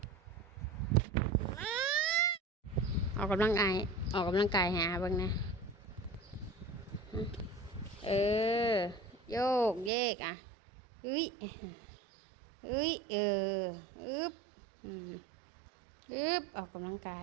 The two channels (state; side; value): drops out; left; at 9.9 s